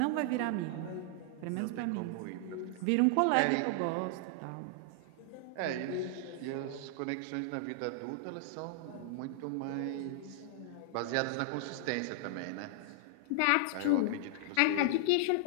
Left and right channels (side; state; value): both; different; correlation -0.01